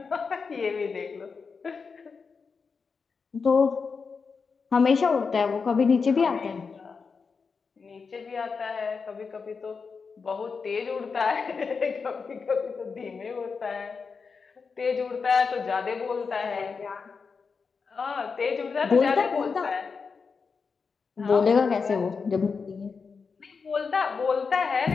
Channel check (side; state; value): right; quieter; 5.2 dB